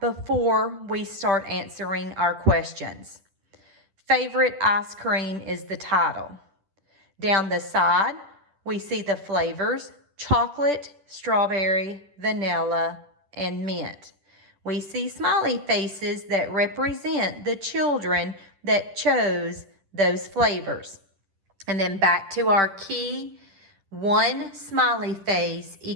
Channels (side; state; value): left; late; 10 ms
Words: before we start answering our questions. Favorite ice cream is the title. Down the side, we see the flavors: chocolate, strawberry, vanilla, and mint. We see smiley faces that represent the children that chose those flavors. And then back to our key, one smiley face